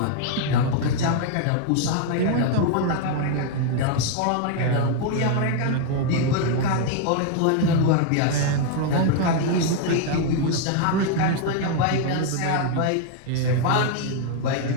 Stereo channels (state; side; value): different; both; correlation 0.00